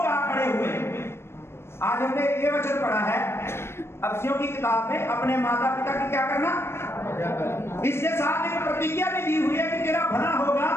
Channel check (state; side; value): late; right; 0.12 ms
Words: आ खड़े हुए? आज हमने ये वचन पढ़ा है अफसियों की किताब में, अपने माता पिता की क्या करना, इसके साथ एक प्रतिज्ञा भी दी हुई है कि तेरा भला होगा